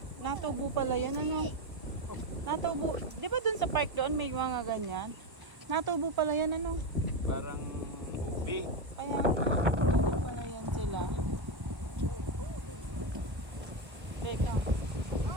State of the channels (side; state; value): left; late; 1.2 ms